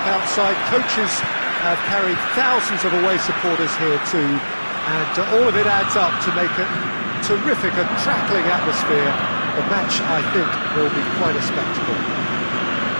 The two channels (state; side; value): inverted; both; correlation -1.00